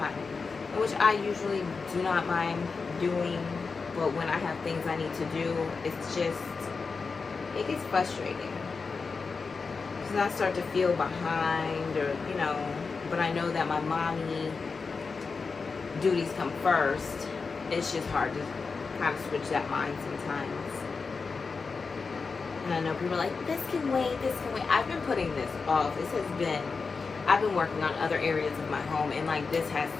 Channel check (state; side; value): quieter; right; 4.7 dB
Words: which I usually do not mind doing, but when I have things I need to do, it's just, it gets frustrating. Because I start to feel behind, or, but I know that my mommy duties come first. It's just hard to kind of switch that mind sometimes. And I know people are like, this can wait. I've been putting this off. I've been working on other areas of my home, and like, this has